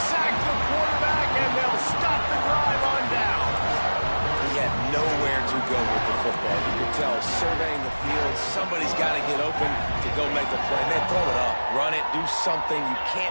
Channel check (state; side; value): inverted; both; correlation -1.00